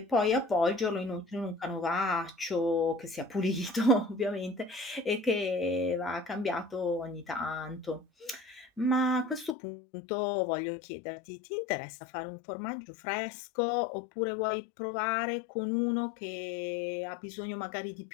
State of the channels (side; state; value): right; drops out; at 9.6 s